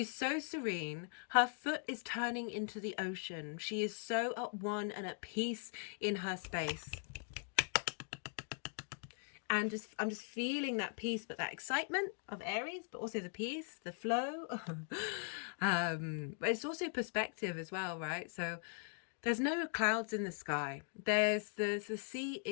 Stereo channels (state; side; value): silent; right; 51 dB below the other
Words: so serene. Her foot is turning into the ocean. She is so at one and at peace in her space. And I'm just feeling that peace, but that excitement of Aries, but also the peace, the flow. But it's also perspective as well, right? So there's no clouds in the sky. The sea